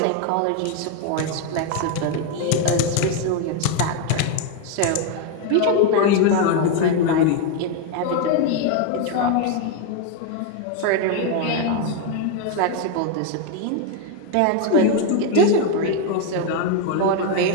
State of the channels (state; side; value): different; both; correlation 0.01